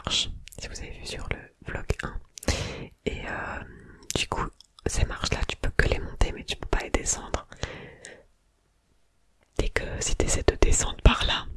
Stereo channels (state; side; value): identical; both; correlation 1.00